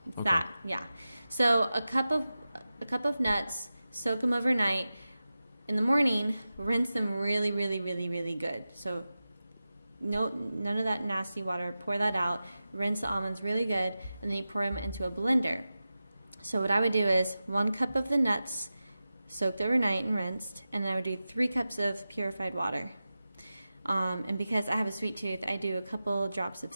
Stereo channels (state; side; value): inverted; both; correlation -0.94